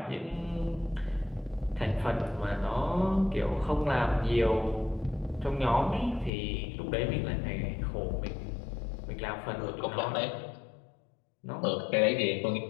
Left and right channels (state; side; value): drops out; right; at 6.3 s